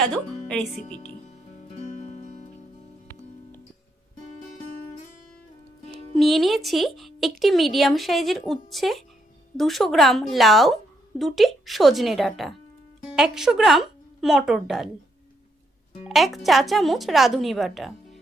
রেসিপিটি। নিয়ে নিয়েছি একটি মিডিয়াম সাইজের উচ্ছে, 200 গ্রাম লাউ, 2টি সজনে ডাঁটা, 100 গ্রাম মটর ডাল, 1 চা চামচ রাঁধুনি বাটা।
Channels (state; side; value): normal; both; correlation 0.77